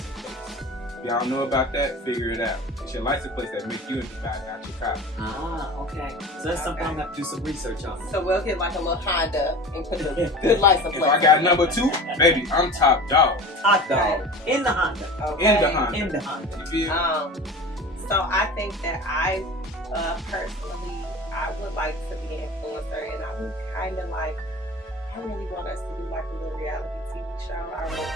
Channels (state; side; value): normal; both; correlation 0.36